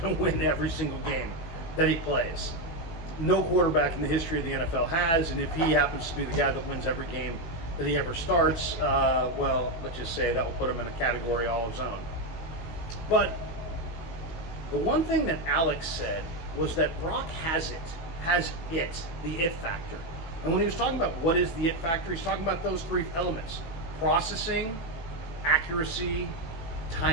going to win every single game that he plays. No quarterback in the history of the NFL has, and if he happens to be the guy that wins every game that he ever starts, well, let's just say that will put him in a category all his own. But the one thing that Alex said was that Brock has the it factor. And when he was talking about what is the it factor, he's talking about those three elements: processing, accuracy,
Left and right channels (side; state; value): right; late; 18 ms